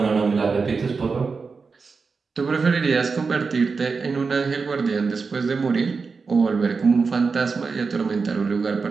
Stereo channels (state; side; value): quieter; left; 4.8 dB